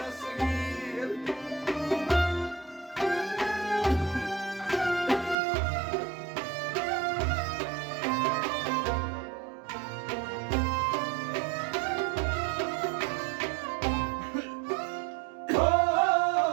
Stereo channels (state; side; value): drops out; left; at 5.4 s